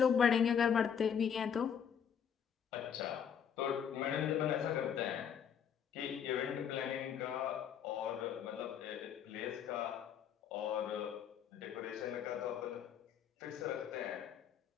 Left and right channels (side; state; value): right; quieter; 8.0 dB